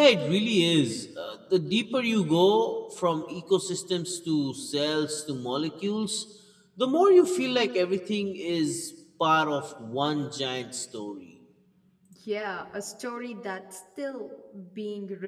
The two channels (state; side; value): identical; both; correlation 1.00